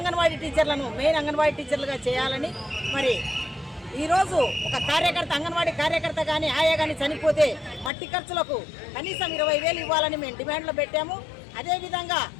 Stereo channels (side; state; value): right; drops out; at 7.9 s